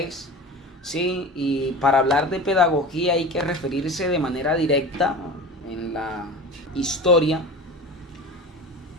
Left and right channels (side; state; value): both; normal; correlation 0.33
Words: Sí, y para hablar de pedagogía hay que referirse de manera directa en la historia